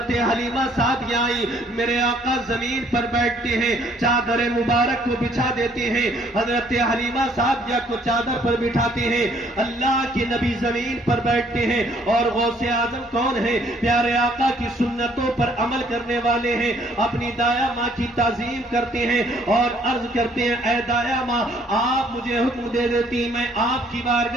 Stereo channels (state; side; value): normal; both; correlation 0.63